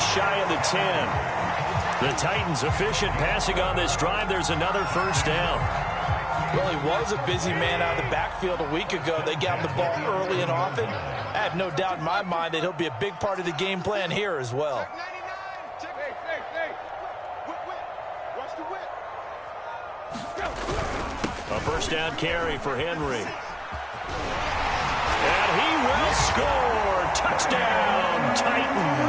of the 10. The Titans efficient passing on this drive. There's another first down. Well, he was a busy man out of the backfield a week ago. They got him the ball early and often. I have no doubt in my mind that he'll be a big part of the game plan here as well. A first down carry for Henry. And he will score. Touchdown,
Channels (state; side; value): identical; both; correlation 1.00